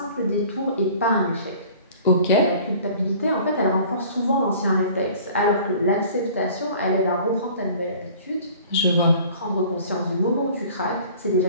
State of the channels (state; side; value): inverted; both; correlation -0.47